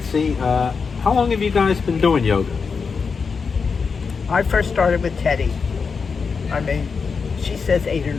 how long have you guys been doing yoga? I first started with Teddy. I mean, she says 8 or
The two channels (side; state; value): right; quieter; 5.3 dB